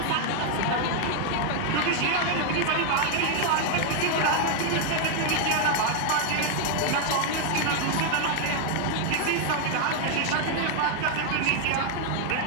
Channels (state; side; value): different; both; correlation 0.00